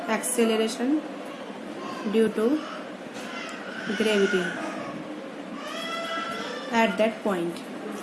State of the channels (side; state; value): both; identical; correlation 1.00